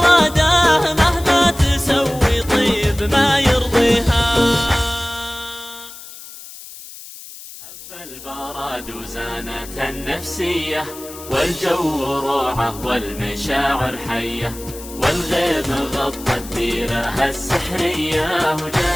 مهما تسوي طيب ما يرضيها. حب البرد وزانة النفسية والجو روعة والمشاعر حية والغيم غطى الديرة السحرية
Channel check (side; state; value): left; noise; hiss, 15 dB below the sound